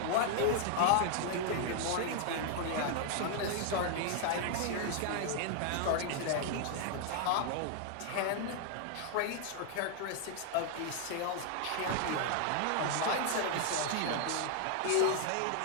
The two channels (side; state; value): both; different; correlation 0.00